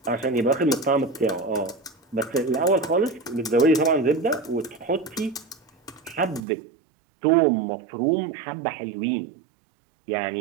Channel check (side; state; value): left; drops out; at 6.4 s